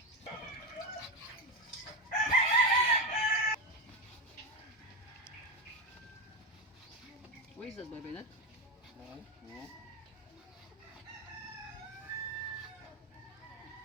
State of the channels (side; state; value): both; normal; correlation 0.14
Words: What is that, baby? That? No.